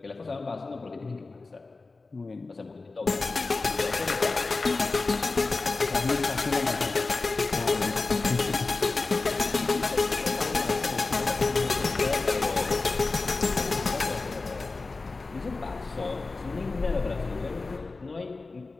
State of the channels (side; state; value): right; quieter; 3.7 dB